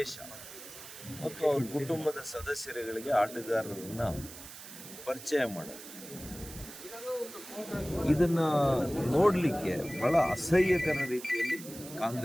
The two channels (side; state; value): right; noise; hiss, 14 dB below the sound